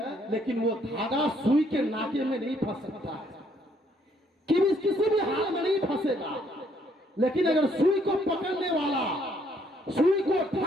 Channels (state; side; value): normal; both; correlation 0.68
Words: लेकिन वो धागा सुई के नाके में नहीं फंस सकता है, किसी भी हाल में नहीं फंसेगा। लेकिन अगर सुई को पकड़ने वाला सुई को